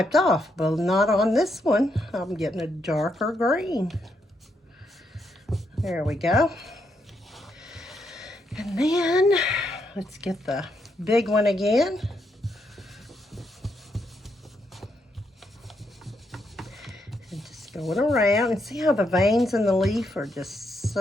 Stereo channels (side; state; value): both; normal; correlation 0.79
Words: off, but not on this one. I'm getting a darker green. There we go. And then let's get the big one again. And just going around and see how the veins in the leaf are just